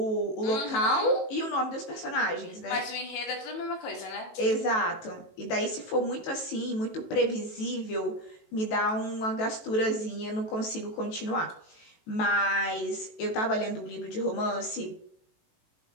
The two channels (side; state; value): right; late; 18 ms